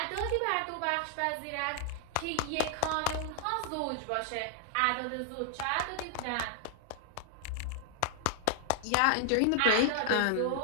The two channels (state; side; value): different; both; correlation 0.00